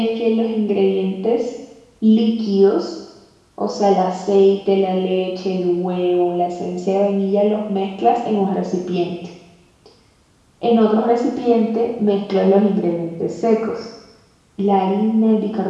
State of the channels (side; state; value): both; identical; correlation 1.00